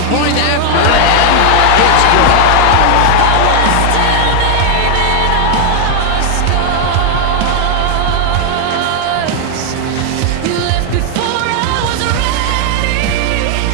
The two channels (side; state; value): both; different; correlation 0.00